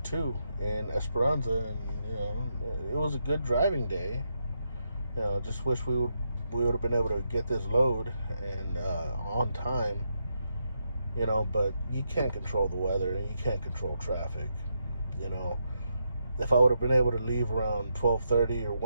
in Esperanza, and, you know, it was a good driving day. You know, just wish we would have been able to get this load and on time, you know, but you can't control the weather, and you can't control traffic, you know. If I would have been able to leave around 12:30 or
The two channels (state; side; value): inverted; both; correlation -0.82